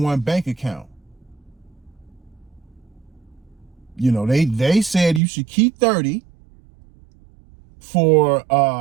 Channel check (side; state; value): left; drops out; at 5.2 s